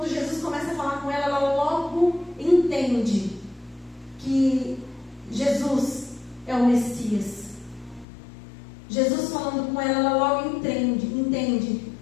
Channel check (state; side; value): drops out; right; at 8.1 s